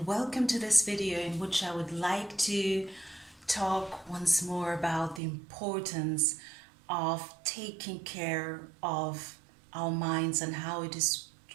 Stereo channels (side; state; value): left; drops out; at 5.2 s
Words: welcome to this video in which I would like to talk once more about the importance of taking care of our minds and how it is